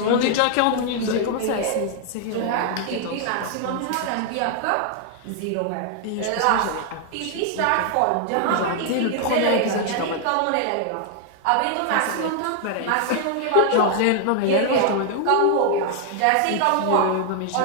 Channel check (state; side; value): different; both; correlation 0.00